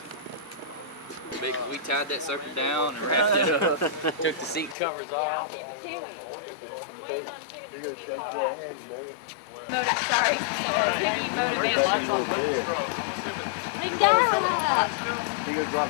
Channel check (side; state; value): right; drops out; at 4.8 s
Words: We tied that sucker down and wrapped it up. Took the seat covers off. Sorry.